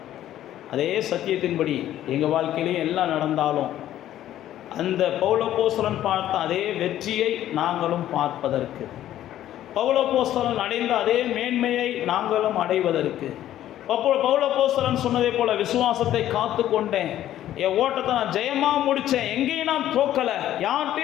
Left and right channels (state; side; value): quieter; right; 12.5 dB